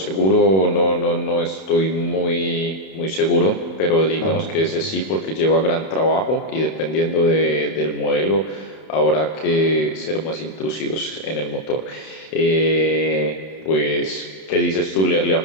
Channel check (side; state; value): right; late; 32 ms